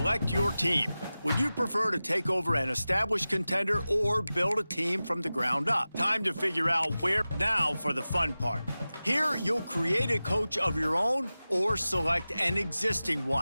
your team. Would you prefer to take over an established contender or build a team from the ground up? Time to figure out where. Now for the fun part. Here, you'll create a coach of your own or select an existing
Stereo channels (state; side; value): inverted; both; correlation -0.96